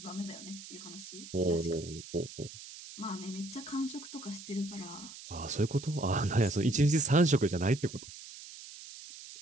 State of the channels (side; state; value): right; noise; hiss, 14 dB below the sound